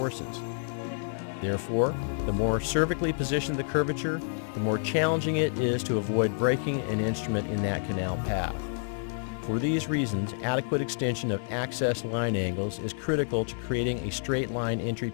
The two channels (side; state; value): right; silent; digital silence